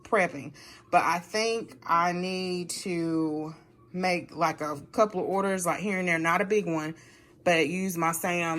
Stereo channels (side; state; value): both; identical; correlation 1.00